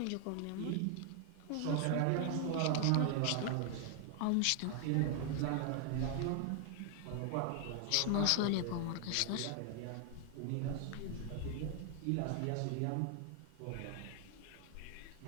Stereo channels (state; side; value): different; both; correlation 0.00